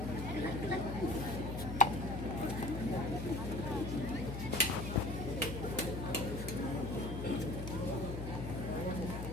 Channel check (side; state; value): left; noise; hum, 5 dB below the sound